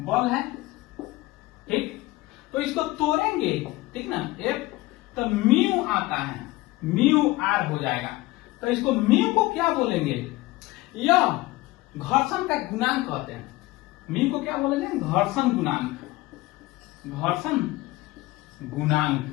है, ठीक। तो इसको तोड़ेंगे, ठीक ना, एफ तो म्यू आता है, म्यू आर हो जाएगा। तो इसको म्यू को क्या बोलेंगे, यह घर्षण का गुणांक कहते हैं। म्यू को क्या बोलेंगे, घर्षण गुणांक, घर्षण गुणांक,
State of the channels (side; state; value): right; quieter; 19.4 dB